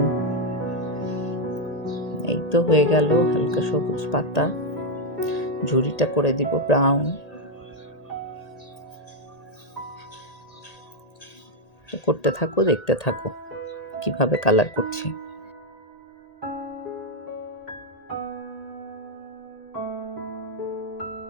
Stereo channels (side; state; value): right; late; 1.8 ms